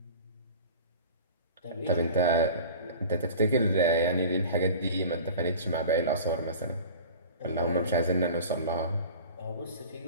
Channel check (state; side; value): inverted; both; correlation -0.39